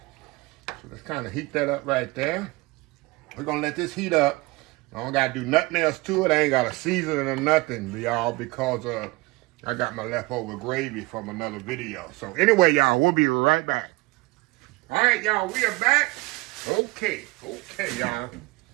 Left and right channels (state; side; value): quieter; left; 23.6 dB